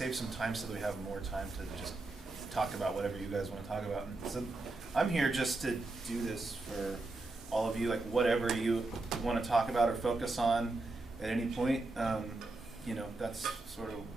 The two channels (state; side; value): quieter; left; 3.1 dB